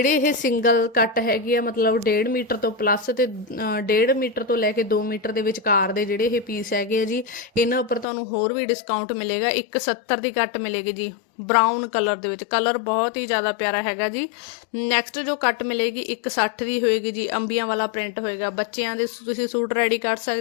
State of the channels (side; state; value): right; drops out; at 8.1 s